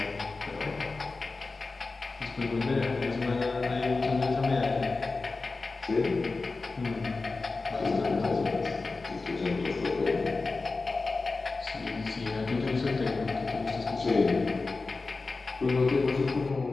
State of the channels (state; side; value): quieter; right; 3.8 dB